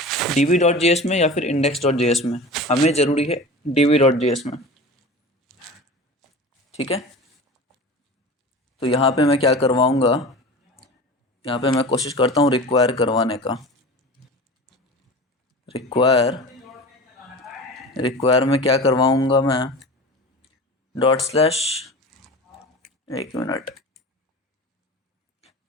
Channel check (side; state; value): both; normal; correlation 0.34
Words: डीबी डॉट जेएस में या फिर इंडेक्स डॉट जेएस में, हमें ज़रूरी है डीबी डॉट जेएस में, ठीक है। तो यहाँ पे मैं क्या करवाऊँगा, यहाँ पे मैं कोशिश करता हूँ रिक्वायर करवाने का, रिक्वायर में क्या करवाऊँगा मैं, डॉट स्लैश, एक मिनट,